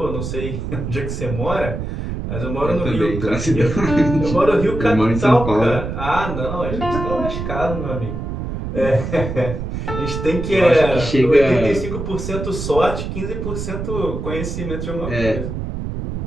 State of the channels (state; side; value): noise; right; rumble, 5 dB below the sound